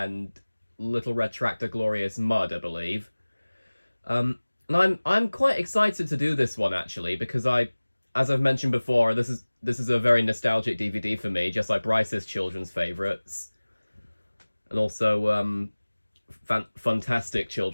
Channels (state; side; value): inverted; both; correlation -1.00